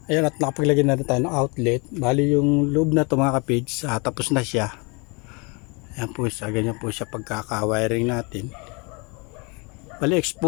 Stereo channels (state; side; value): quieter; right; 30.6 dB